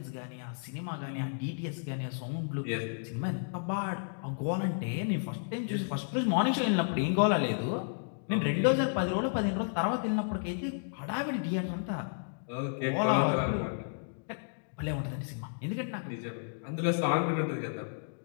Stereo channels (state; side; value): silent; right; digital silence